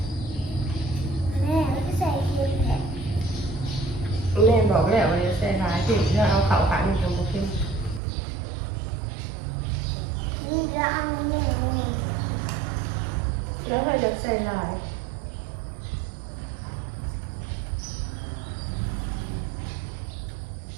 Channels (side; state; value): left; drops out; at 8.0 s